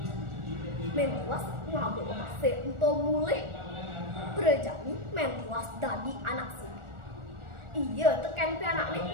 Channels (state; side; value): late; left; 1.4 ms